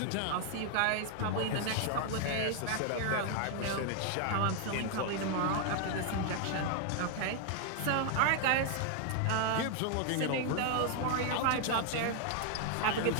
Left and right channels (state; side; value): different; both; correlation 0.00